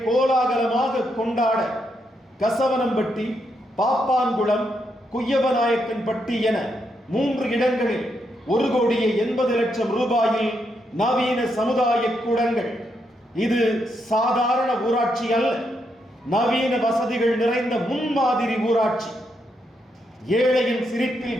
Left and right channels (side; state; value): both; normal; correlation 0.80